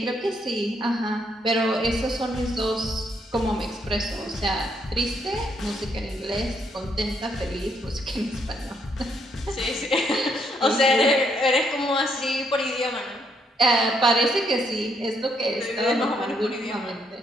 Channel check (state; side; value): normal; both; correlation 0.73